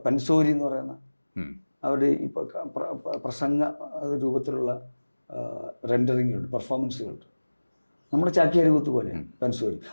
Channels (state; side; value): inverted; both; correlation -1.00